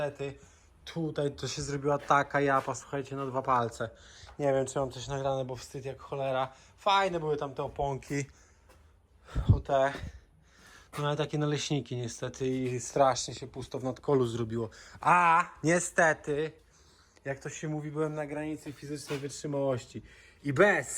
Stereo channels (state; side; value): identical; both; correlation 1.00